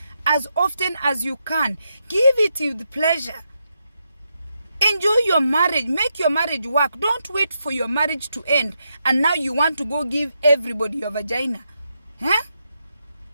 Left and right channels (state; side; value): inverted; both; correlation -0.83